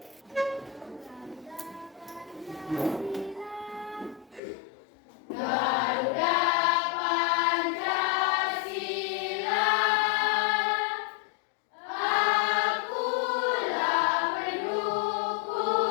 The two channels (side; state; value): right; drops out; at 4.4 s